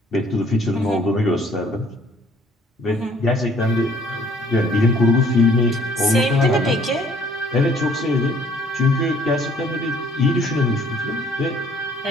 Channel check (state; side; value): normal; both; correlation 0.59